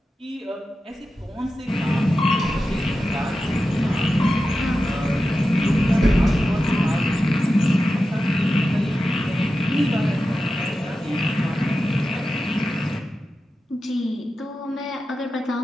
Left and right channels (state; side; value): normal; both; correlation 0.92